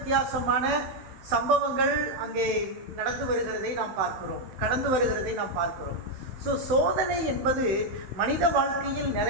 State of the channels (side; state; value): left; late; 15 ms